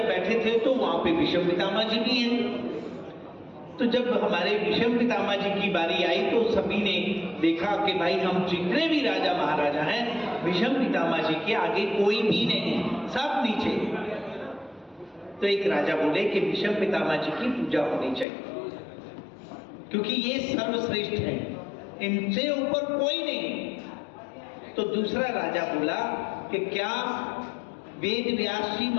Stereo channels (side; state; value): right; drops out; at 18.2 s